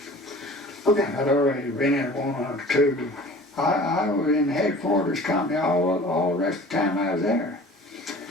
Okay. I'd already been in 1 or 2. I was in the headquarters company all the rest of the time I was there.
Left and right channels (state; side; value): normal; both; correlation 0.44